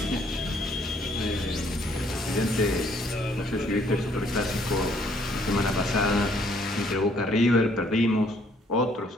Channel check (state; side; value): normal; both; correlation 0.65